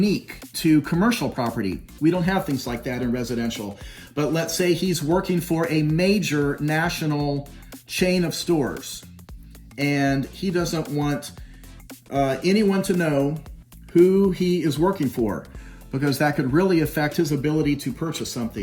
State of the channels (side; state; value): both; identical; correlation 1.00